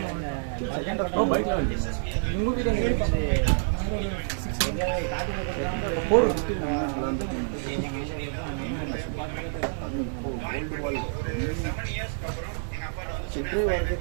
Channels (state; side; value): silent; left; digital silence